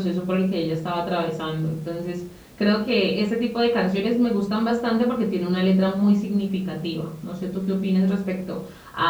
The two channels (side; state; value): both; identical; correlation 1.00